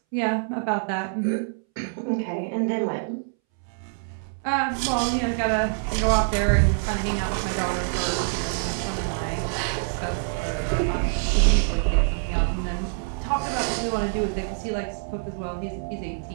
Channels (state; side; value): silent; left; 61 dB below the other